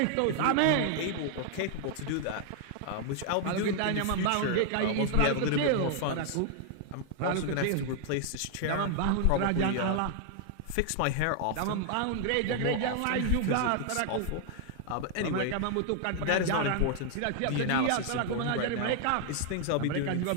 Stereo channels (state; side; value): different; both; correlation 0.00